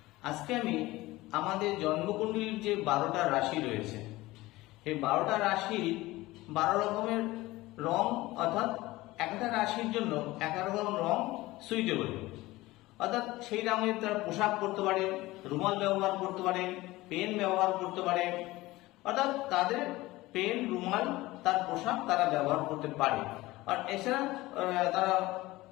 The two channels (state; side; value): quieter; right; 19.0 dB